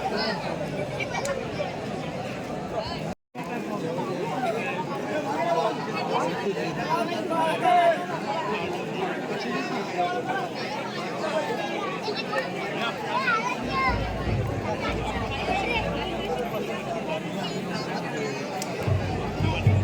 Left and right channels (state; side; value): identical; both; correlation 1.00